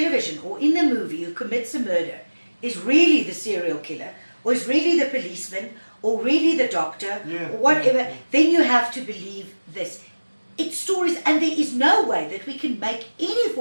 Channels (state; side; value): inverted; both; correlation -1.00